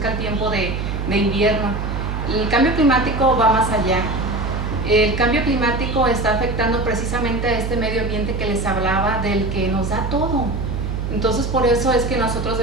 el tiempo de invierno. El cambio climático va más allá. El cambio climático está afectando precisamente a este medio ambiente que les hablaba, del que nos da todo. Entonces por eso es que nosotros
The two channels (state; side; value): noise; right; hum, 3 dB below the sound